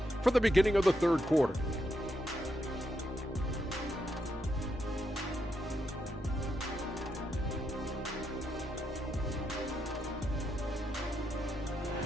for the beginning of the third quarter.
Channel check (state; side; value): normal; both; correlation 0.81